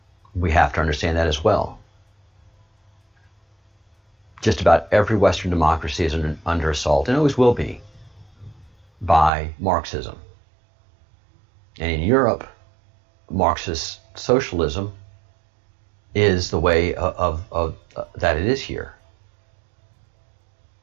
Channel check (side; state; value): left; drops out; at 9.3 s